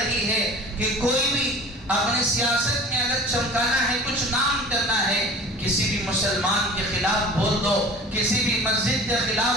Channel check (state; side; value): normal; both; correlation 0.42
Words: ہے کہ کوئی بھی اپنے سیاست میں اگر چمکانا ہے، کچھ نام کرنا ہے، کسی بھی مسلمان کے خلاف بول دو، کسی بھی مسجد کے